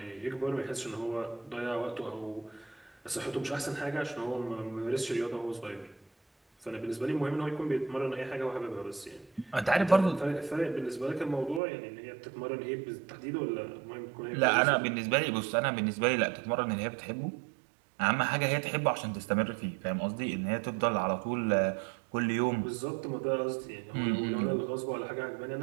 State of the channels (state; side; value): drops out; left; at 11.6 s